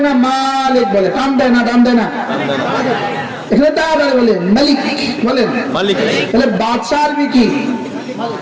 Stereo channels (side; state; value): both; identical; correlation 1.00